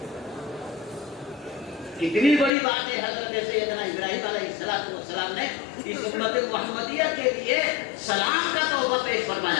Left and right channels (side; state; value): right; drops out; at 2.5 s